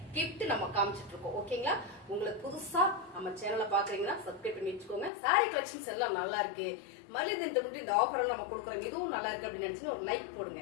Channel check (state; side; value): drops out; right; at 5.1 s